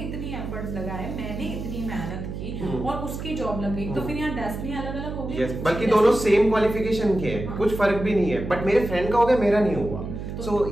एफर्ट्स लगाए, मैंने इतनी मेहनत की और उसकी जॉब लग गई, तो फिर यहाँ डेस्टिनी अलग अलग हो गई। बल्कि दोनों सेम क्वालिफिकेशन के हैं, कुछ फर्क भी नहीं है, बट मेरे फ्रेंड का हो गया, मेरा नहीं हुआ। सो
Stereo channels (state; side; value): noise; right; hum, 7 dB below the sound